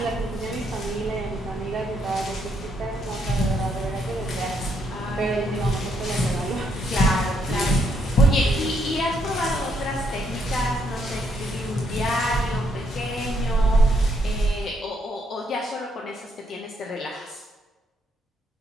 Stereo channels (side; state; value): both; normal; correlation 0.74